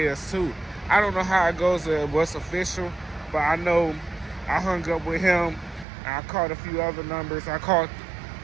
us too? I don't know how it goes, what's official, but I know I hung up with him. And I called a few other numbers. I called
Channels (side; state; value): left; drops out; at 5.9 s